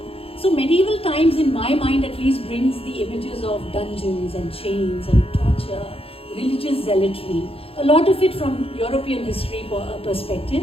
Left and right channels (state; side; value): late; right; 0.27 ms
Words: So medieval times, in my mind at least, brings the images of dungeons and chains and torture, religious zealotry, a lot of it from European history perspective.